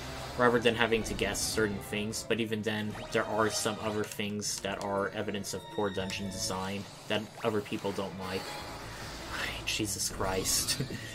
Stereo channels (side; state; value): both; identical; correlation 1.00